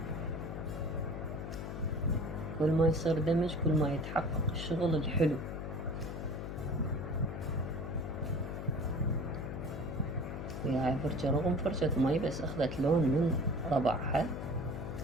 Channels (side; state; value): left; noise; hum, 6 dB below the sound